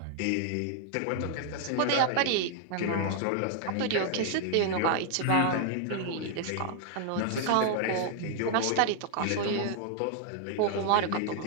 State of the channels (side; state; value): both; different; correlation 0.00